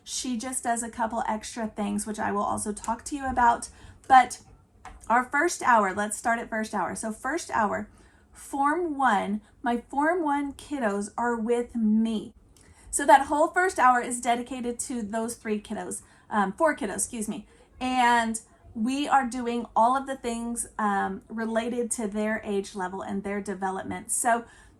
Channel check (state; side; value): identical; both; correlation 1.00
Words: She just does a couple extra things, which I will also talk to you about. But our first hour, let's start at first hour. So first hour, Form 1, my Form 1 kiddos are with me. So that whole first hour is dedicated to those 4 kiddos, excuse me. And we are doing all of the things related to their age level and their development. So